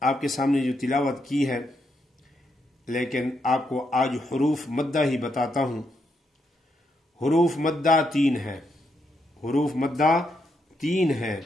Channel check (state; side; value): normal; both; correlation 0.80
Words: آپ کے سامنے جو تلاوت کی ہے، لیکن آپ کو آج حروف مدہ ہی بتاتا ہوں۔ حروف مدہ 3 ہیں، حروف مدہ 3 ہیں۔